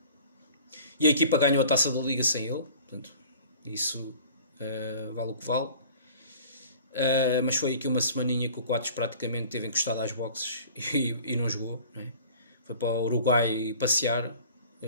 e a equipa ganhou a taça da Liga sem ele, portanto isso vale o que vale. Mas foi aqui uma semaninha que o Coates praticamente teve encostado às boxes e não jogou, não é? Foi para o Uruguai passear,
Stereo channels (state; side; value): inverted; both; correlation -0.46